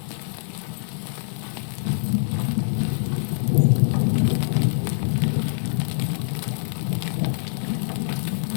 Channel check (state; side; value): silent; right; digital silence